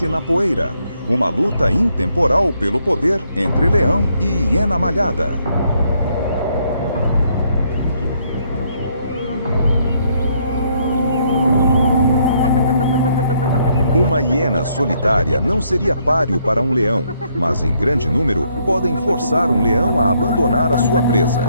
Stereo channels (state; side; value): inverted; both; correlation -0.71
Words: na poeira. Uma luta intemporal pelo poder entre leão e hiena malhada. Uma hiena solitária não seria páreo para um leão, mas em grande número podem forçar um leão a abandonar a sua presa.